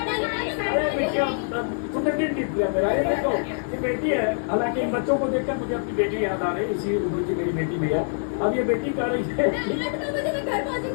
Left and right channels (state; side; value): silent; right; digital silence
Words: तुमने दिल जीत लिया मेरा। ये देखो ये बेटी है, हालांकि इन बच्चों को देखकर मुझे अपनी बेटी याद आ रही है, इसी उम्र की मेरी बेटी भी है। अब ये बेटी कह रही है मैं घर